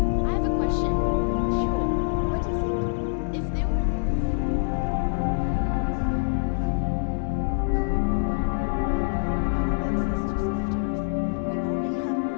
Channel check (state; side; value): silent; right; 62 dB below the other